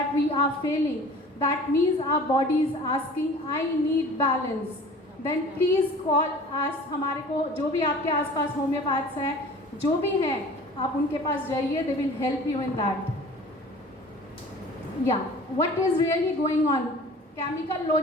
we are feeling, that means our body is asking I need balance. Then please call us. हमारे को जो भी आपके आसपास होम्योपैथ्स हैं, जो भी हैं, आप उनके पास जाइए. They will help you in that. What is really going on. Chemical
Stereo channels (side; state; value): both; normal; correlation 0.44